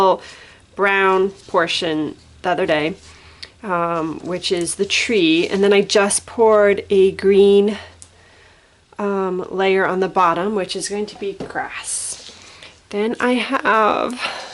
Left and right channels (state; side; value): identical; both; correlation 1.00